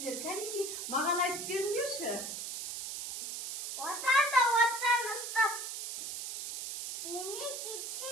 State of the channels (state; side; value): noise; right; hiss, 6 dB below the sound